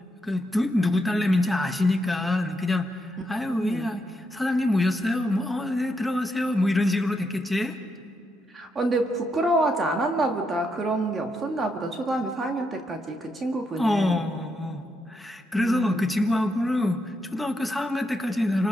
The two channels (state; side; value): normal; both; correlation 0.81